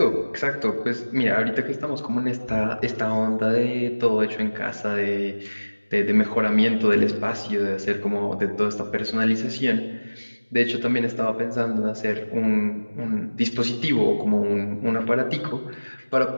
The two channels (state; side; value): inverted; both; correlation -1.00